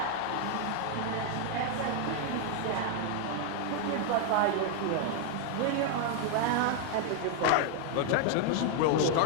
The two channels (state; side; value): different; both; correlation 0.00